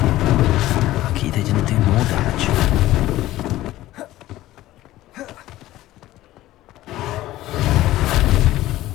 Lucky they didn't do more damage.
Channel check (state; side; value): quieter; right; 15.6 dB